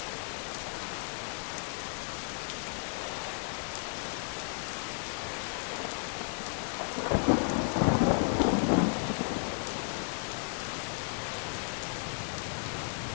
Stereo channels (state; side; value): silent; right; 55 dB below the other